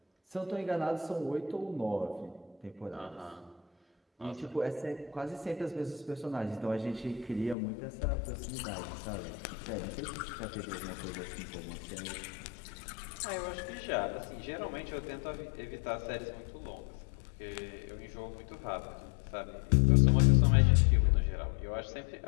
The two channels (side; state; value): right; drops out; at 7.6 s